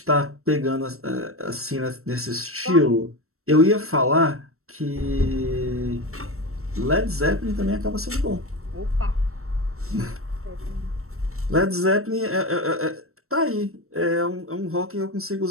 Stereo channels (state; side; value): late; left; 0.63 ms